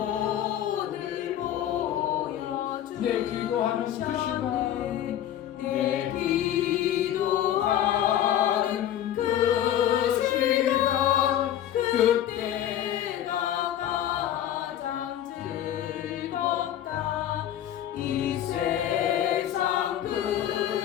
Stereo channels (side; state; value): right; quieter; 11.3 dB